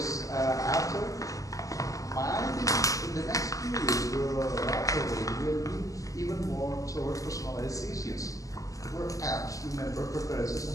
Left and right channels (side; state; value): right; late; 0.16 ms